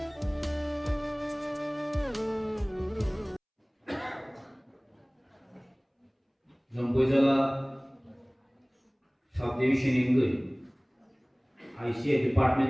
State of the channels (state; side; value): identical; both; correlation 1.00